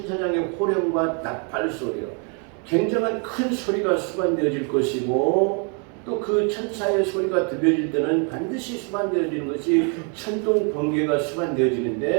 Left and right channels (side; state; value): left; quieter; 38.5 dB